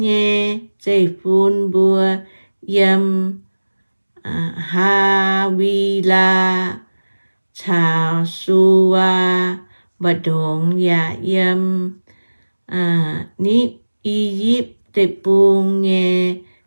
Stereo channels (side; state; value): both; inverted; correlation -1.00